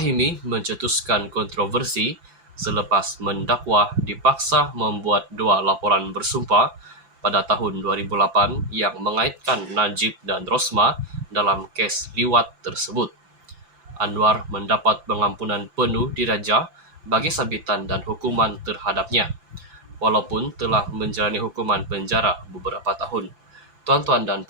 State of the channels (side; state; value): left; late; 5.9 ms